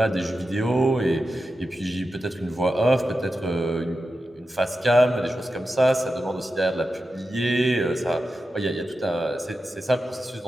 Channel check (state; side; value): normal; both; correlation 0.91